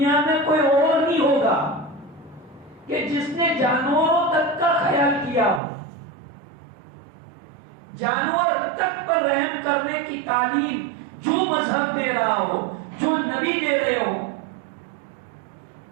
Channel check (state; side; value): drops out; left; at 5.6 s